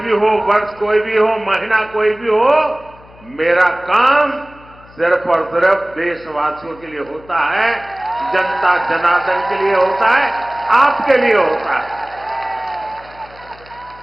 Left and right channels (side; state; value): left; noise; hum, 24 dB below the sound